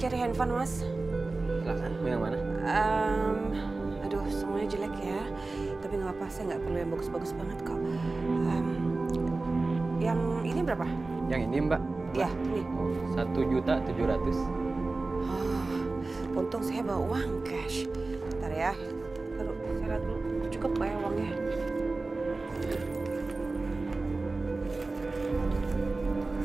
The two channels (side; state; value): left; quieter; 3.5 dB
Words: handphone, Mas. Silahkan, mau yang mana? Aduh, semuanya jelek ya. Tapi nggak apa-apa, saya nggak perlu yang bagus-bagus banget kok. Yang ini berapa? Yang ini Mbak. Ya, ini. 1.700.000. Oh, untung saya bawa uang cash. Bentar ya. Taruh, saya lihat dulu. Cukup nggak ya uangnya?